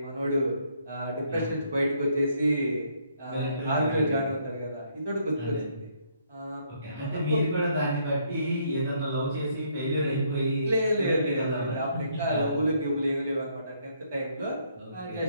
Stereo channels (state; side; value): inverted; both; correlation -0.69